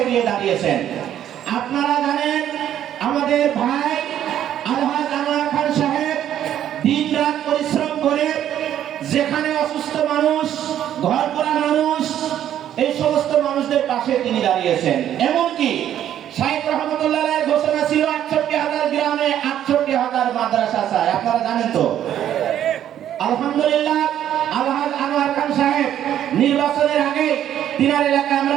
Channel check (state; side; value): quieter; left; 10.9 dB